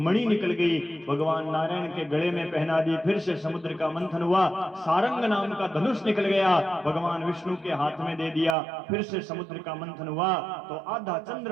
निकल गई, भगवान नारायण के गले में पहना दी। फिर से समुद्र का मंथन हुआ, सारंग नाम का धनुष निकल गया, भगवान विष्णु के हाथ में दे दिया। फिर से समुद्र का मंथन हुआ तो आधा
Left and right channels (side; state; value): left; drops out; at 8.6 s